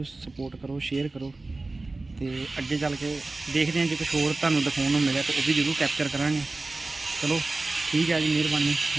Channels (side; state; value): left; quieter; 3.2 dB